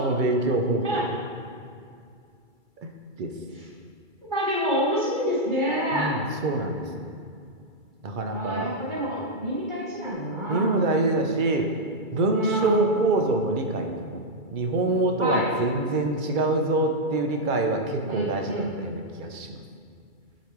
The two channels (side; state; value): left; late; 2.3 ms